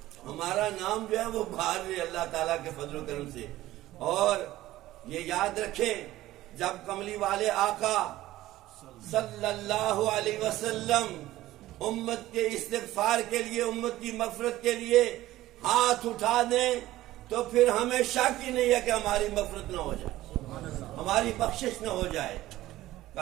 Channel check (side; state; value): left; quieter; 15.7 dB